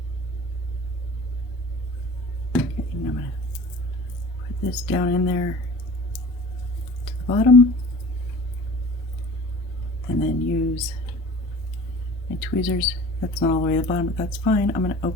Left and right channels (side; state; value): both; normal; correlation 0.42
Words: this down in there to the bottom, and then use my tweezers. That's not all the way to the bottom, but that's fine. I'm going to